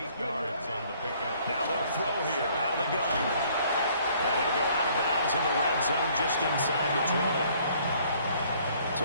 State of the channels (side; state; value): both; inverted; correlation -0.60